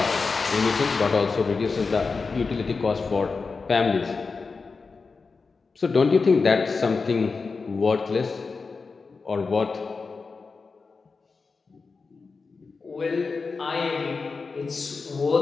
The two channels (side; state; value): right; quieter; 4.5 dB